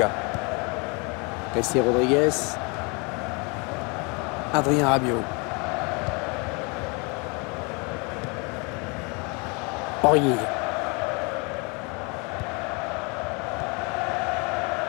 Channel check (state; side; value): quieter; right; 31.0 dB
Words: Jessé Rodriguez. Adrien Rabiot. Aurier.